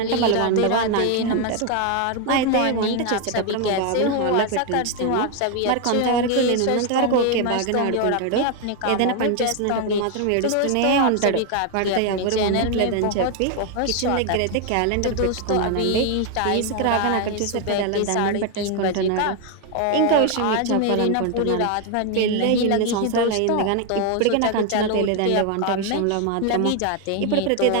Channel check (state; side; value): different; both; correlation 0.01